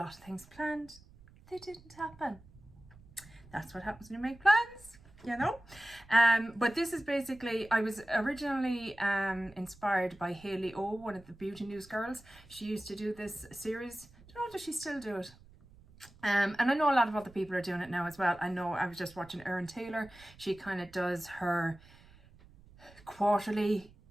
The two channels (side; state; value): right; noise; rumble, 24 dB below the sound